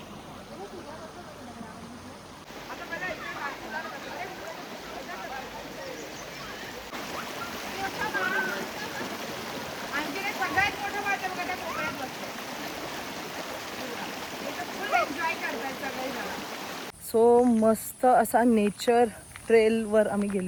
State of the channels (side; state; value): both; identical; correlation 1.00